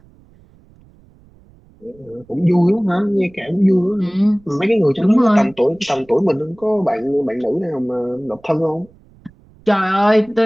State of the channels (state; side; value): noise; right; rumble, 28 dB below the sound